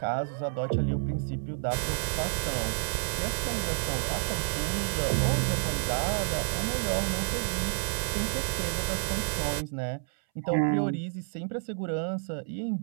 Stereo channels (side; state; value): left; silent; 58 dB below the other